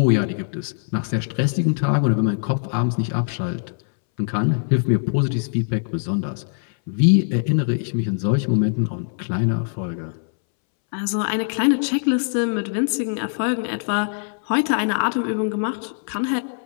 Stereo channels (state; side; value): silent; right; 64 dB below the other